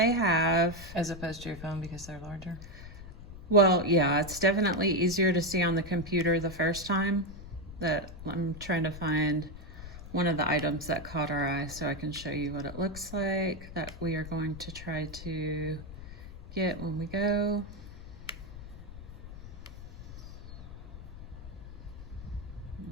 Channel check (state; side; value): noise; left; rumble, 13 dB below the sound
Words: have. As opposed to your phone because they're larger? Well, yeah, it's definitely easier to see on the computer the first time. That I'm trying to find one of the items that caught our eye so I can show you what it looks like that we are going to try to get when we go.